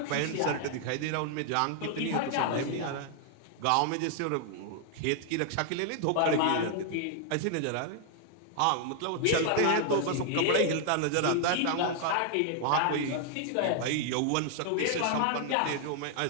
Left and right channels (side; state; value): both; different; correlation 0.00